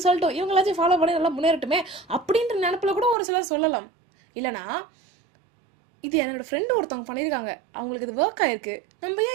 சொல்லட்டும், இவங்களாச்சும் ஃபாலோ பண்ணி நல்லா முன்னேறட்டுமே அப்படின்ற நினப்பில் கூட ஒரு சிலர் சொல்லலாம். இல்லைனா இது என்னோட ஃப்ரெண்டு ஒருத்தவங்க பண்ணியிருக்காங்க, அவங்களுக்கு இது ஒர்க் ஆயிருக்கு, நம்ம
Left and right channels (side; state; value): left; drops out; at 3.2 s